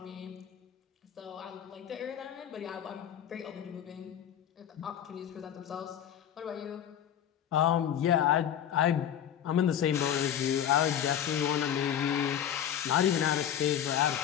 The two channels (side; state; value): right; quieter; 9.8 dB